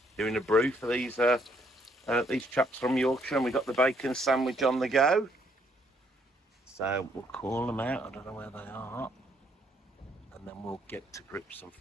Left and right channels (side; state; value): both; normal; correlation 0.69